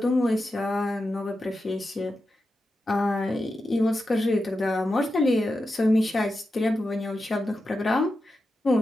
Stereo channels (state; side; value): normal; both; correlation 0.90